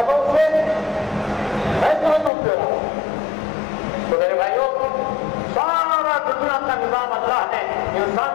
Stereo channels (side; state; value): right; drops out; at 2.3 s